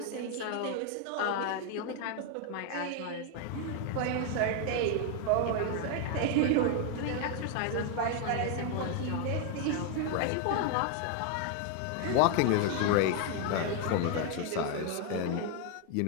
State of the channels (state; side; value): different; both; correlation 0.01